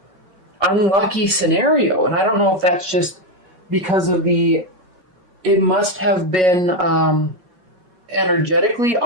unlucky scenario, and I don't know if that's just because of it must have been energetically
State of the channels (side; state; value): left; late; 5.3 ms